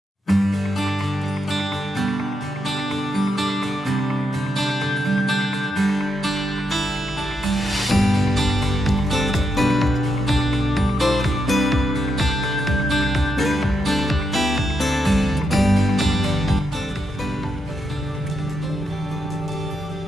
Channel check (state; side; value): normal; both; correlation 0.82